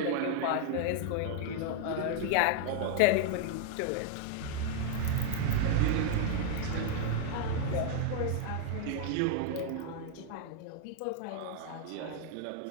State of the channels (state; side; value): different; both; correlation 0.00